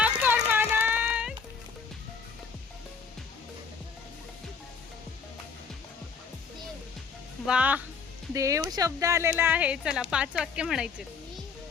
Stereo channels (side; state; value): right; quieter; 5.7 dB